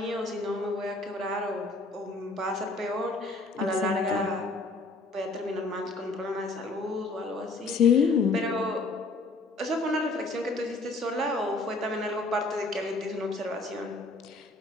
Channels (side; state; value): right; quieter; 3.2 dB